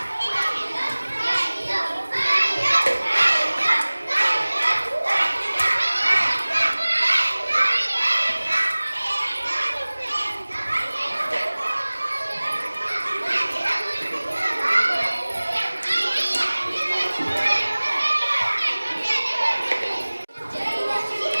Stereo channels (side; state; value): both; inverted; correlation -1.00